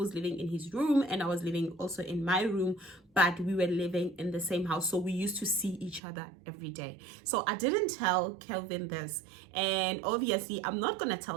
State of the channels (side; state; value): left; drops out; at 6.0 s